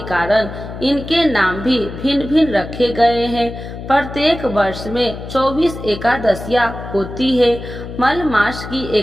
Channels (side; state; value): left; noise; hum, 10 dB below the sound